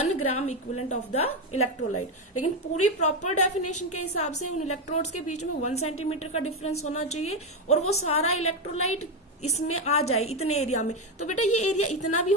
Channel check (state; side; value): normal; both; correlation 0.09